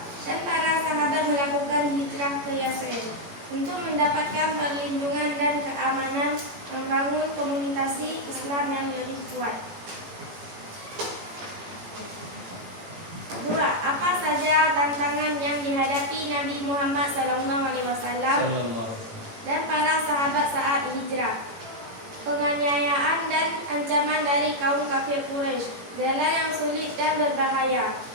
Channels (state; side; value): late; left; 18 ms